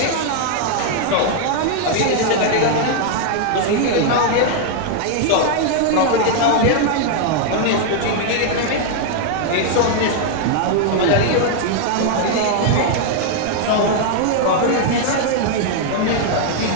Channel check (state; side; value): different; both; correlation 0.00